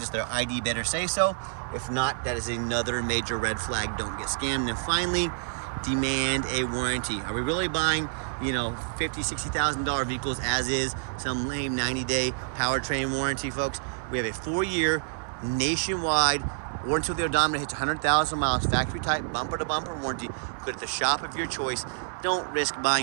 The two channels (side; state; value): left; silent; 59 dB below the other